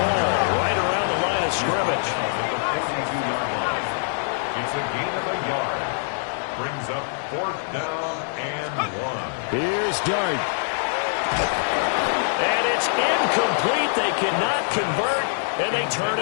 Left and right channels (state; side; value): silent; right; 59 dB below the other